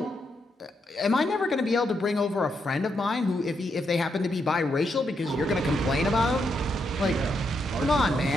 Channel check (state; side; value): normal; both; correlation 0.80